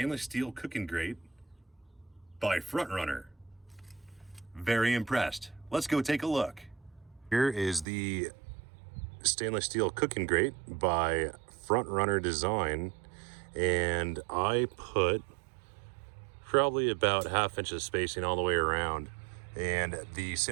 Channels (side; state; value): left; drops out; at 7.9 s